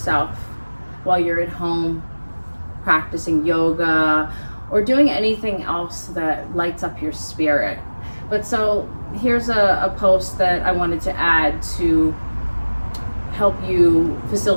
while you're at home practicing yoga or doing anything else that lights up your spirit. But so here's a post that I wanted to add to help you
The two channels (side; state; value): both; inverted; correlation -1.00